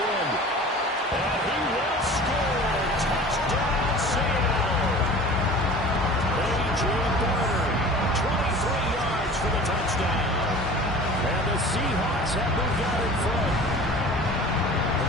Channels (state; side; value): normal; both; correlation 0.41